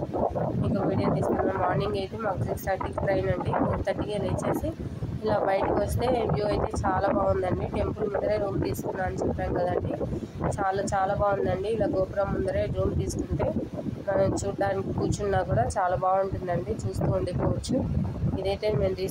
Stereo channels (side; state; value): both; identical; correlation 1.00